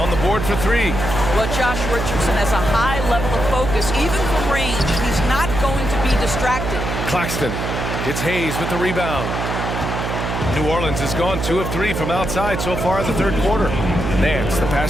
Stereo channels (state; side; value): noise; right; hum, 3 dB below the sound